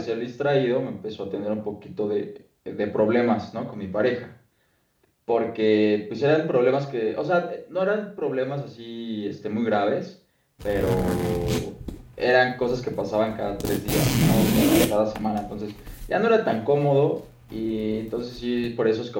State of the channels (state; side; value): identical; both; correlation 1.00